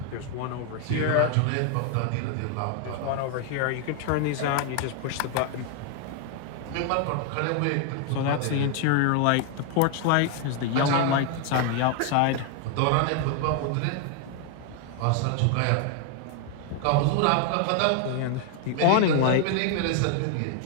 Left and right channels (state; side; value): different; both; correlation 0.00